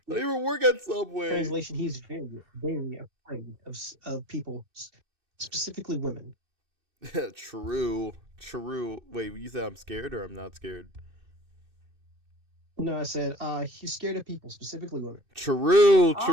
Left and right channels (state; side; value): late; left; 2.6 ms